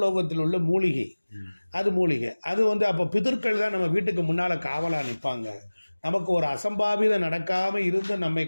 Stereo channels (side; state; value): both; inverted; correlation -1.00